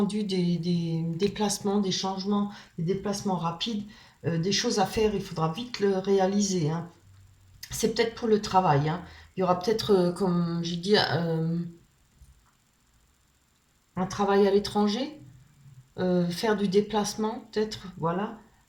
des déplacements, des changements, des déplacements rapides, des choses à faire, il faudra vite le réaliser. Hein. C'est peut-être pour le travail. Hein. Il y aura peut-être, comme j'ai dit, un travail à l'étranger, faire du déplacement, peut-être, voilà.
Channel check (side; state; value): both; identical; correlation 1.00